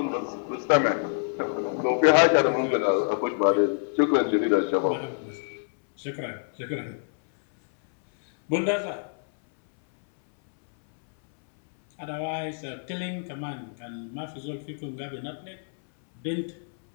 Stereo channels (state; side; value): silent; right; 61 dB below the other